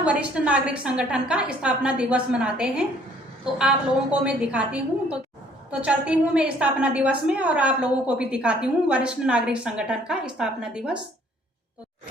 वरिष्ठ नागरिक संगठन का स्थापना दिवस मनाते हैं। तो आप लोगों को मैं दिखाती हूँ, तो चलती हूँ मैं स्थापना दिवस में और आप लोगों को भी दिखाती हूँ वरिष्ठ नागरिक संगठन का स्थापना दिवस।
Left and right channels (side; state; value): both; normal; correlation 0.60